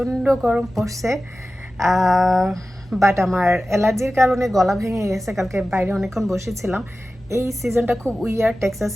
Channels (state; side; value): normal; both; correlation 0.95